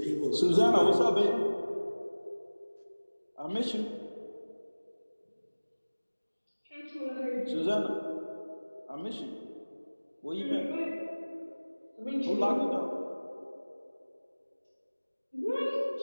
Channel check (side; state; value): both; inverted; correlation -1.00